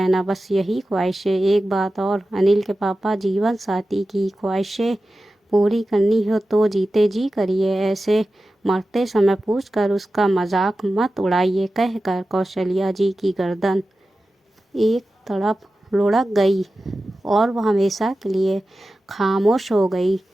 बस यही ख्वाहिशें। एक बात और, अनिल के पापा, जीवन साथी की ख्वाहिशें पूरी करनी हो तो जीते जी करिए, ऐसे मरते समय पूछकर उसका मजाक मत उड़ाइए। कहकर कौशल्या जी की गर्दन एक तरफ लुढ़क गई और वह हमेशा के लिए खामोश हो गई।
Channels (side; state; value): both; normal; correlation 0.94